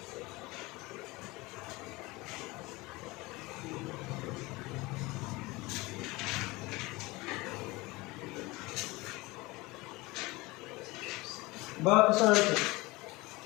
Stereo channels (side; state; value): right; quieter; 22.4 dB